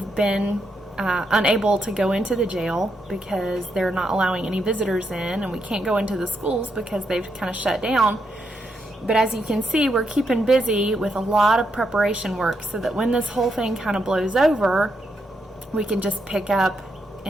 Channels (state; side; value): normal; both; correlation 0.80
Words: been unable to go into the jail because they're not allowing any visitors in, and we can't go into the schools because they've kind of shut down. But as you can see, we're keeping busy with a lot of preparation work so that when this whole thing kind of blows over, we can just pick up